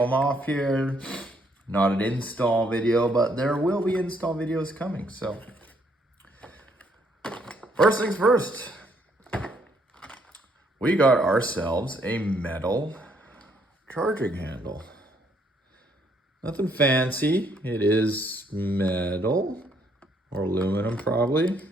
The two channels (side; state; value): both; normal; correlation 0.69